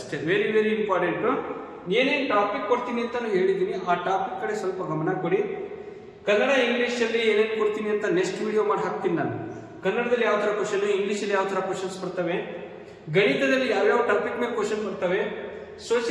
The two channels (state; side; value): identical; both; correlation 1.00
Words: Very very important. ಏನೇನು ಟಾಪಿಕ್ ಕೊಡ್ತೀನಿ ಅಂತ ಹೇಳಿದ್ದೀನಿ, ಆ ಟಾಪಿಕ್ ಕಡೆ ಸ್ವಲ್ಪ ಗಮನ ಕೊಡಿ. ಕನ್ನಡ ಇಂಗ್ಲೀಷಲ್ಲಿ ಏನೇನು ಕೊಡ್ತೀನಿ ಅಂತ ನೆಕ್ಸ್ಟ್ ವಿಡಿಯೋ ಮಾಡಿ ಹಾಕ್ತೀನಿ ನಾನು. ಕನ್ನಡದಲ್ಲಿ ಯಾವ ಥರ ಕ್ವಶನ್, ಇಂಗ್ಲೀಷಲ್ಲಿ ಯಾವ ಥರ ಕ್ವಶನ್ಸ್ ಬರ್ತವೆ, ಗಣಿತದಲ್ಲಿ ಯಾವ್ಯಾವ ಟಾಪಿಕ್ ಮೇಲೆ ಕ್ವಶನ್ ಬರ್ತವೆ,